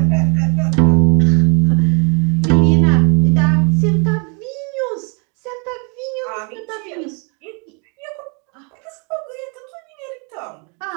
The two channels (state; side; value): quieter; left; 35.2 dB